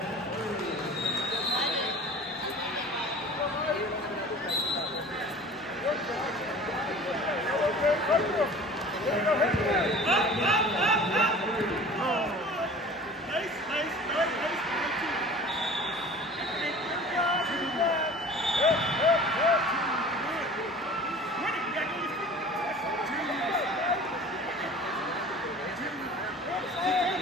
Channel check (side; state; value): both; normal; correlation 0.42